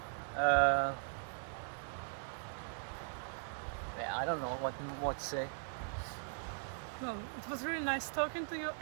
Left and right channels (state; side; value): silent; left; digital silence